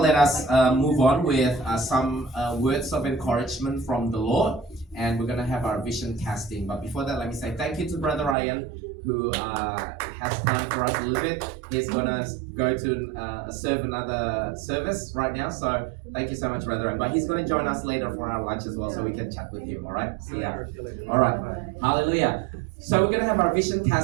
us move on with some words of encouragement from the Lord. And we're going to have our vision casting. But before that, let me say thank you to Brother Ryan, who has time for us a little bit. He's going to go to serve another service right now. So thank you so much, Brother Ryan. But he's going to join us later for our lunch as well, so we can chat with him. All right? See ya. All right. Hallelujah. So we're going to have our vision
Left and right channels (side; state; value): left; drops out; at 8.3 s